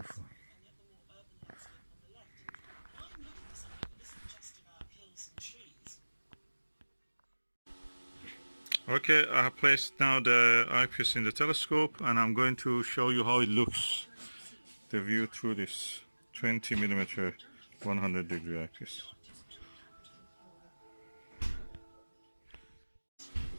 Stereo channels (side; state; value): both; inverted; correlation -1.00